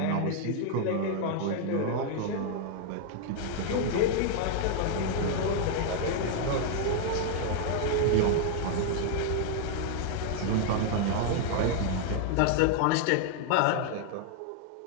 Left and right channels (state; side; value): different; both; correlation 0.00